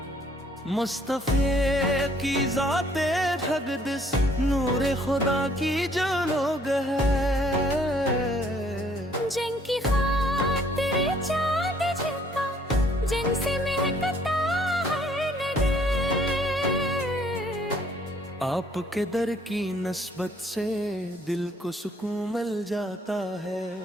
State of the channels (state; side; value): normal; both; correlation 0.63